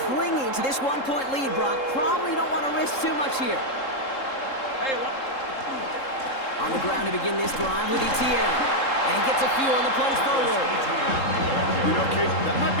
clinging to this one-point lead, Brock, probably don't want to risk too much here. On the ground to begin this drive with Etienne. And he gets a few on the plunge forward. You know, Kate, that might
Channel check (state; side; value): late; right; 3.7 ms